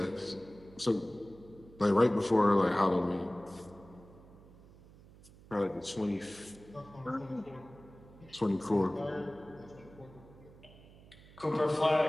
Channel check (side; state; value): right; noise; hum, 22 dB below the sound